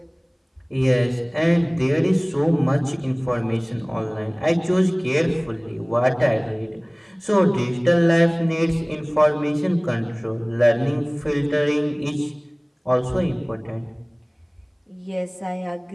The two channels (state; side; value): identical; both; correlation 1.00